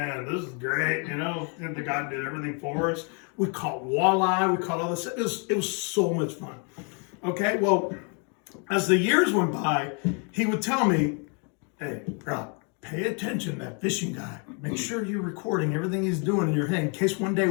this is great, And the guy did everything for us. We caught walleye, we caught all this. It was so much fun. Okay, well, as the years went by, he would tell me, hey, Rob, pay attention to that fishing guy. Make sure you're recording everything he's doing in your head in case one day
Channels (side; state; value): right; quieter; 37.3 dB